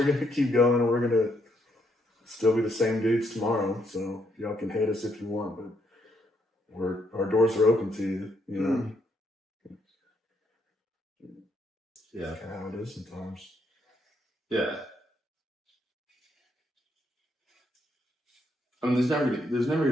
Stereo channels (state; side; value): normal; both; correlation 0.75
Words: going to keep going, and we're going to still be the same dudes tomorrow. So y'all can hate us if you want, but our doors are open to you, Yeah. That's kind of how it is sometimes. Yeah. I mean, there's never